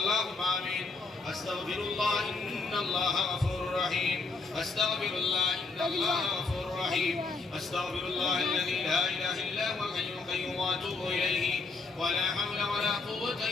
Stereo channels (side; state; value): right; quieter; 4.0 dB